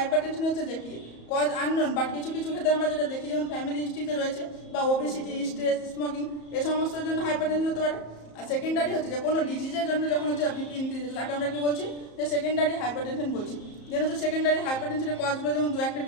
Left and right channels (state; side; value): late; right; 34 ms